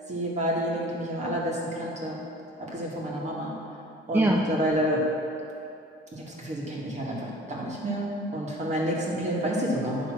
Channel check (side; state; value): both; normal; correlation 0.47